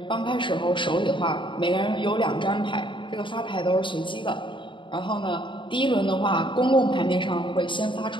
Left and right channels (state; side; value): late; right; 0.24 ms